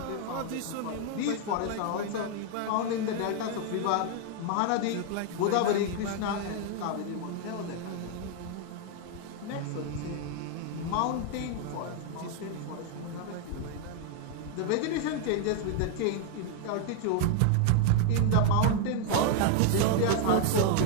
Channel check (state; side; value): different; both; correlation 0.00